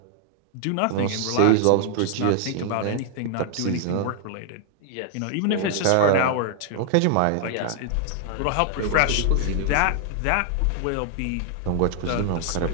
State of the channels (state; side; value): different; both; correlation 0.00